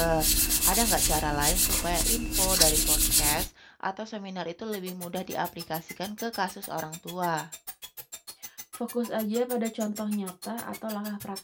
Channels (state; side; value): identical; both; correlation 1.00